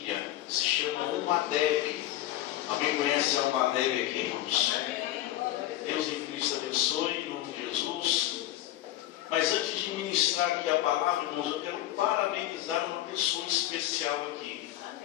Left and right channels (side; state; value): right; quieter; 14.3 dB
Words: se chama UMADEB. Alguém conhece a UMADEB aqui, irmãos? Deus em Cristo abençoe, em nome de Jesus. Mas antes de ministrar aqui a palavra, irmãos, eu quero parabenizar uma pessoa especial aqui.